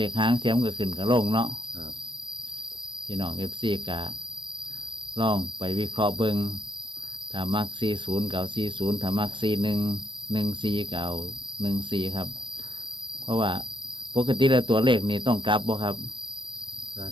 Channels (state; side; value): late; left; 0.24 ms